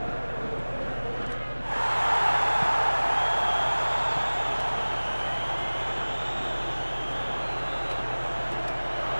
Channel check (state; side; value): inverted; both; correlation -1.00